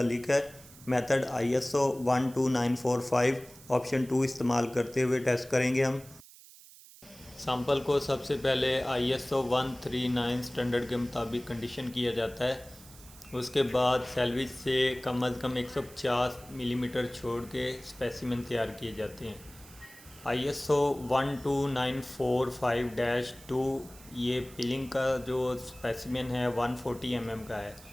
है। मेथड ISO 12945 ऑप्शन 2 इस्तेमाल करते हुए टेस्ट करेंगे हम। सैंपल को सबसे पहले ISO 139 स्टैंडर्ड के मुताबिक कंडीशन किया जाता है। उसके बाद सैलविज से कम अज़ कम 150 मिलीमीटर छोड़ के स्पेसिमेन तैयार किए जाते हैं। ISO 12945-2 ये पिलिंग का जो स्पेसिमेन है 140 mm का है।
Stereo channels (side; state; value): right; noise; hiss, 21 dB below the sound